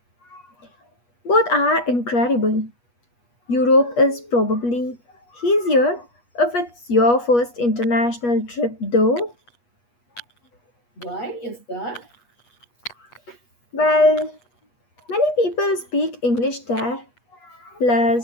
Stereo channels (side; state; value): right; late; 8.3 ms